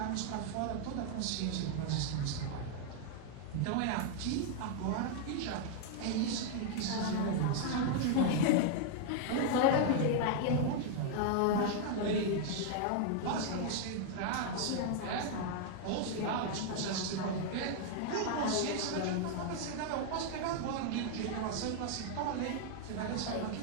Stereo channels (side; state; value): both; different; correlation 0.00